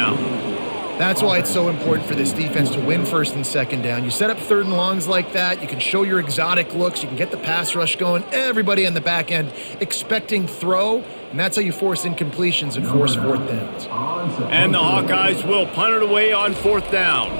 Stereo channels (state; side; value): inverted; both; correlation -1.00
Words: That's why it's so important for this defense to win 1st and 2nd down. You set up 3rd and longs like that, you can show your exotic looks, you can get the pass rush going, everybody on the back end expecting throw, and that's how you force incompletions and force 4th downs. And the Hawkeyes will punt it away on 4th down.